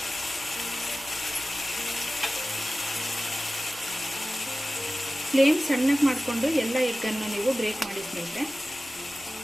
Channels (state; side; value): noise; right; hum, 30 dB below the sound